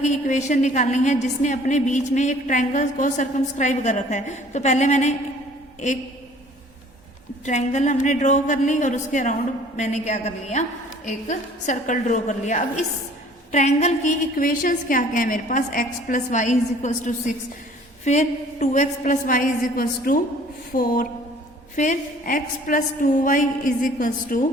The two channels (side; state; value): both; normal; correlation 0.53